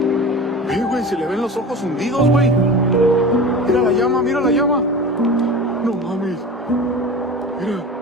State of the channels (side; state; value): both; normal; correlation 0.34